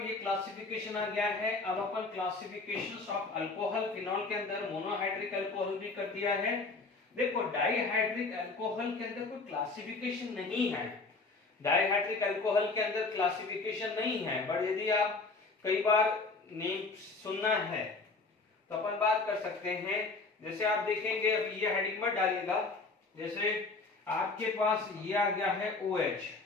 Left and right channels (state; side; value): quieter; right; 3.8 dB